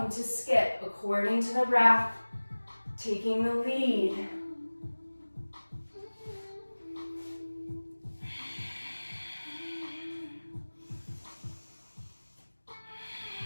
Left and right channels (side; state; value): both; inverted; correlation -1.00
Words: to skip according to the breath. Taking the lead.